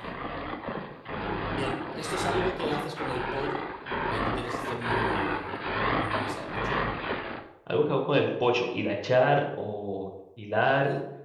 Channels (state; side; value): identical; both; correlation 1.00